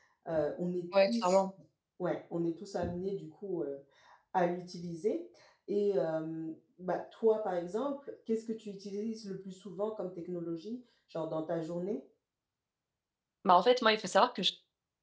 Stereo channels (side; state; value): both; identical; correlation 1.00